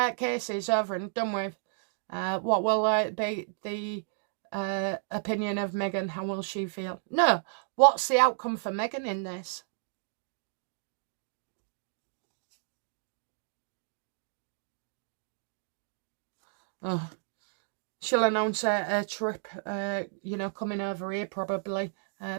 case is over and done with, what will be the opinion of Meghan? How will she feel? No, what's the outcome for Meghan in this? Oh, she'll announce a trip, you know, coming over here probably.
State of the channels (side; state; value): left; silent; digital silence